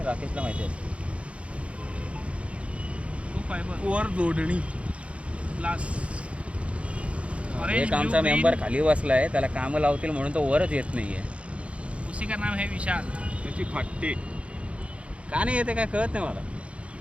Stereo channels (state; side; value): late; left; 0.061 ms